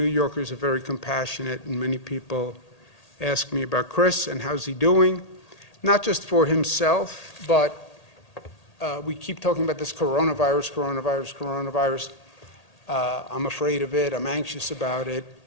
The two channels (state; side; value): late; right; 1.8 ms